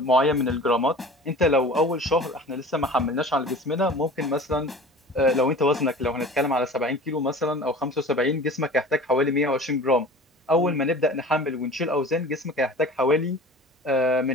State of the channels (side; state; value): both; normal; correlation 0.40